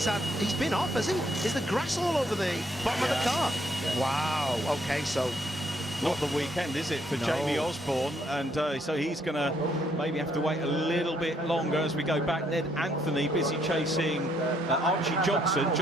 been off, has he? Is the grass all over the bottom of the car? Yeah. Wow, okay, so... Not the weekend, is it, for Jamie Osborne? And so he's going to maybe have to wait a little bit longer as we go back. Ned Anthony busy chasing Archie Johnson.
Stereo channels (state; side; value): normal; both; correlation 0.71